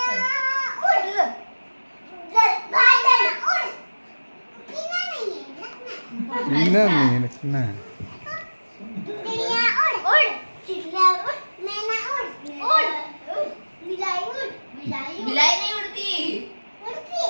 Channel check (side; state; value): both; inverted; correlation -1.00